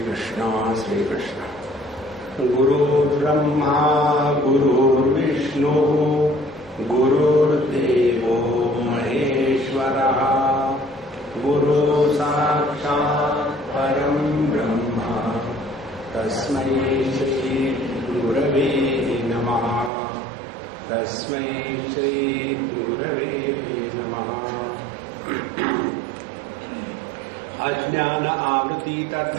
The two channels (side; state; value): left; drops out; at 19.9 s